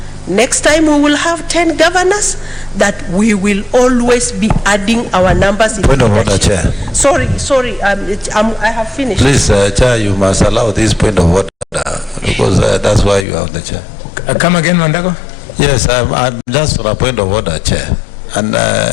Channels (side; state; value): right; drops out; at 13.2 s